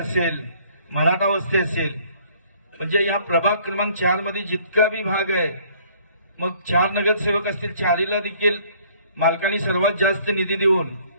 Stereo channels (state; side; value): inverted; both; correlation -0.59